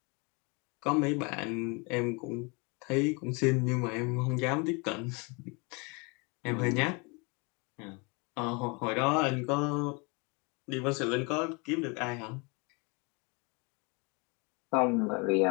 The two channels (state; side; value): quieter; right; 30.3 dB